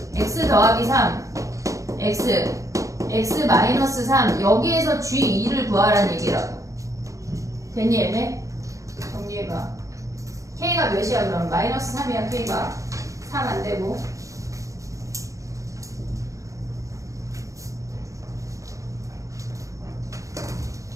x 더하기 3 x 마이너스 3 여기에서 g2를 구하란 얘기라고. 됐니 얘네? 정리해봐. k가 몇이야 그럼? 마이너스 3이야 k가. 3 안되고.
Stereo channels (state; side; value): late; left; 0.16 ms